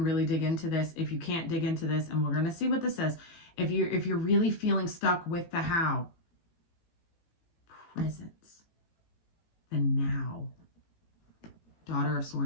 really dig into this. If you can't dig into this, and we're going to see what this says. If you're really feeling stuck with the how, presence, the now. Daughter of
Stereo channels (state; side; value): late; right; 18 ms